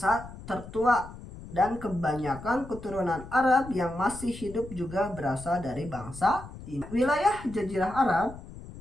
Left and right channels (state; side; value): noise; left; rumble, 14 dB below the sound